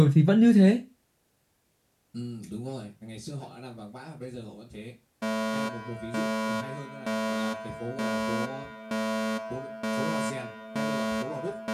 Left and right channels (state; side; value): identical; both; correlation 1.00